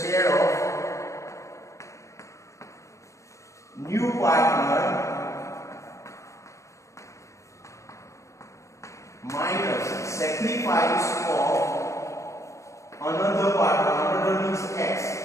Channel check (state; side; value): late; right; 0.15 ms